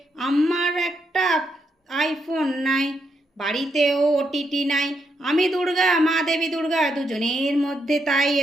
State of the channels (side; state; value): both; normal; correlation 0.80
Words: আমার একটা আইফোন নাই, বাড়িতেও ওটিটি নাই। আমি দুর্গা, মা দেবী দুর্গা, দুজনের মধ্যে তাই